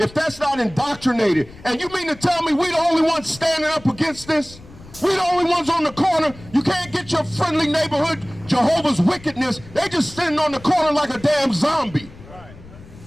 that's not indoctrinated, and you mean to tell me we the only ones standing up against this? We the only ones on the corner. You can't get your friendly neighborhood Jehovah's wickedness. They just sitting on the corner like a damn zombie.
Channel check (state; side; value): noise; left; rumble, 20 dB below the sound